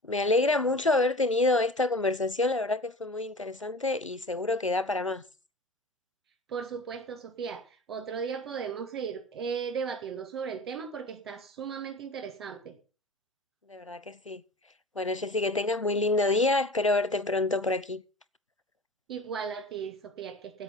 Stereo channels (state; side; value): normal; both; correlation 0.38